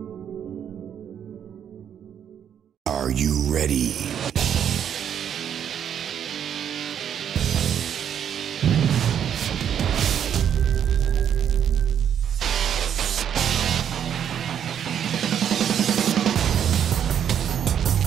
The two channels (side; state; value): left; quieter; 9.0 dB